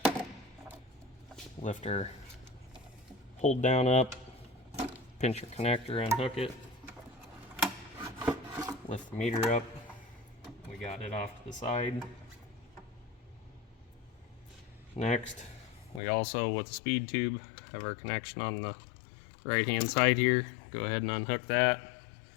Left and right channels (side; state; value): right; drops out; at 16.0 s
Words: lift our hold down up, pinch your connector, unhook it, lift the meter up. We got it off to the side. Next, we also, with the speed tube, have our connection on the right hand side here. Go ahead and unhook that.